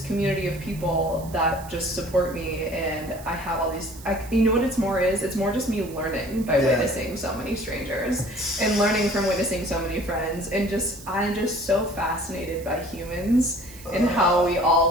community of people that just support me, and I have all these, you know what it's more just me learning by witnessing so many strangers and learning from witnessing so many friends, and I'm just so fascinated by humans and how we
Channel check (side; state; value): right; noise; hiss, 19 dB below the sound